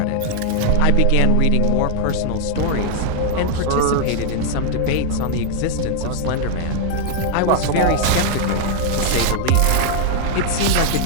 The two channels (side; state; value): both; different; correlation 0.00